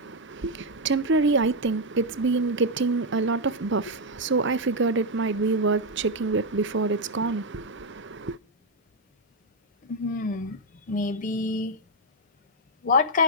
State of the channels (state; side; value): normal; both; correlation 0.02